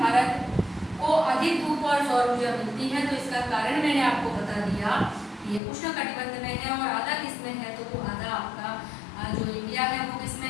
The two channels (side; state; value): right; drops out; at 5.6 s